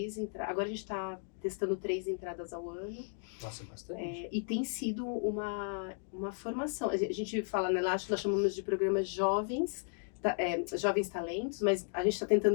entradas. Agora a gente está testando 3 entradas ao ano. Nossa, bastante. E tem sido uma formação. A gente fala, né? Lá nós chamamos de programas jovens talentos, mas a gente está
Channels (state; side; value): silent; right; 55 dB below the other